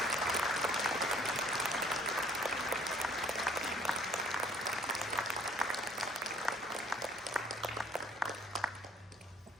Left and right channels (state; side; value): normal; both; correlation 0.58